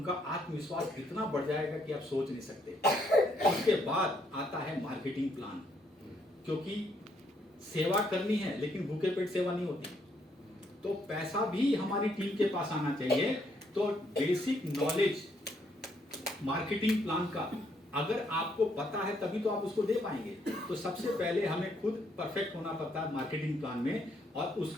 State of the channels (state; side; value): normal; both; correlation 0.72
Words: आत्मविश्वास इतना बढ़ जाएगा कि आप सोच नहीं सकते। उसके बाद आता है मार्केटिंग प्लान, क्योंकि सेवा करनी है लेकिन भूखे पेट सेवा नहीं होती। तो पैसा भी हमारी टीम के पास आना चाहिए। तो बेसिक नॉलेज मार्केटिंग प्लान का अगर आपको पता है तभी तो आप उसको दे पाएंगे। तो सबसे पहले हमें खुद परफेक्ट होना पड़ता है मार्केटिंग प्लान में, और